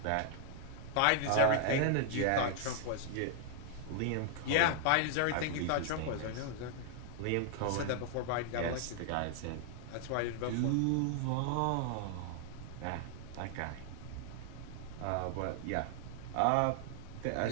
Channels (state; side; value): different; both; correlation 0.00